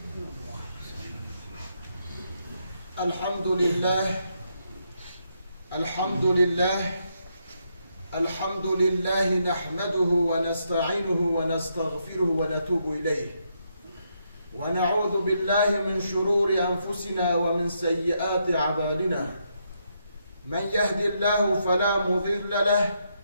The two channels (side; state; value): both; inverted; correlation -0.78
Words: الحمد لله الحمد لله الحمد لله نحمده ونستعينه ونستغفره ونتوب إليه ونعوذ بالله من شرور أنفسنا ومن سيئات أعمالنا من يهد الله فلا مضل له